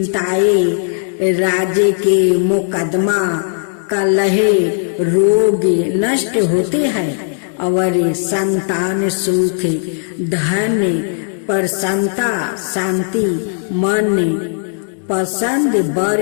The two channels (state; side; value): silent; right; digital silence